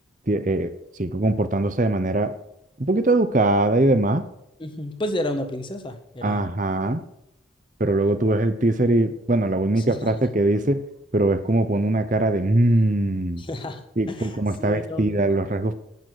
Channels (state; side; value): normal; both; correlation 0.60